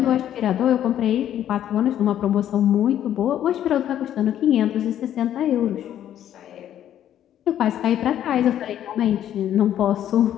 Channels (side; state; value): right; quieter; 11.0 dB